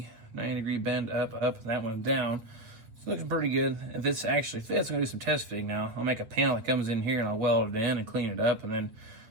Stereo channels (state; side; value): late; left; 8.5 ms